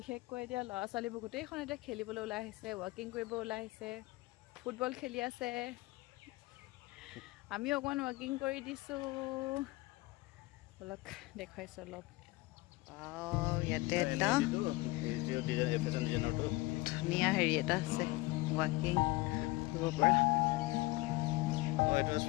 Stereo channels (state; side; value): quieter; right; 21.3 dB